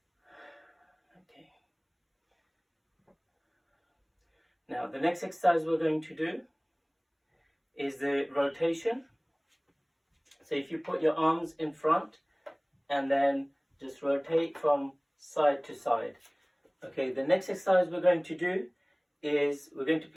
Okay. Now the next exercise we're going to do is the rotation. So if you put your arms in front and then just rotate from side to side. Okay, the next exercise we're going to do is we're going to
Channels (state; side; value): identical; both; correlation 1.00